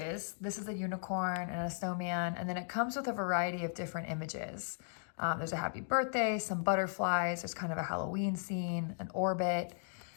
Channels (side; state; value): right; silent; digital silence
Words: This is a unicorn and a snowman, and then it comes with a variety of different images. There's a happy birthday, some butterflies, there's kind of a Halloween scene, an orbit.